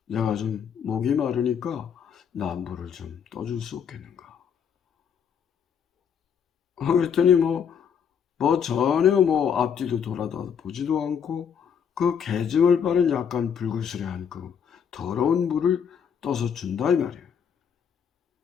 내가 좀 목이 마르니까 나 물을 좀 떠줄 수 없겠는가. 그랬더니 전혀 앞뒤도 돌아다 보지도 않고 그 개증을 빠른 약간 불그스레한 그 더러운 물을 떠서 준다 이 말이에요.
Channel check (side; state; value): right; quieter; 7.5 dB